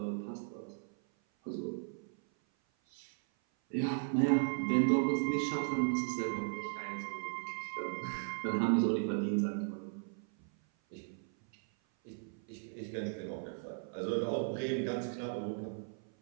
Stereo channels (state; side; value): silent; left; 53 dB below the other